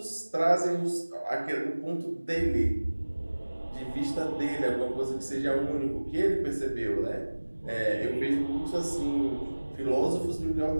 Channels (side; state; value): both; inverted; correlation -1.00